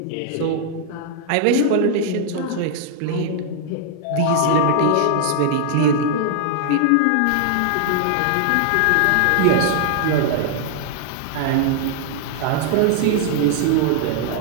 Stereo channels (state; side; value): different; both; correlation 0.00